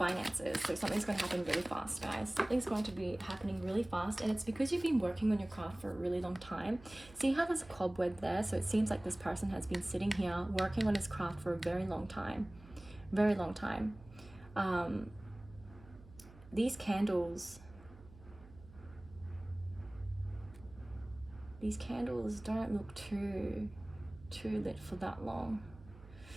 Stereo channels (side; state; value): right; noise; hum, 21 dB below the sound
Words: So something's going to happen really fast, guys. Something's going to be happening really fast, and it's because you've been working on your craft for a really long time. See how there's a cobweb there? So it seems like this person has been sitting here working on his craft for a very long time. Very long time. These candles don't look too lit for that long.